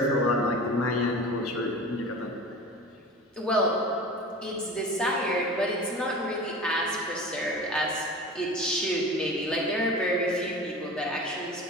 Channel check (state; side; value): normal; both; correlation 0.35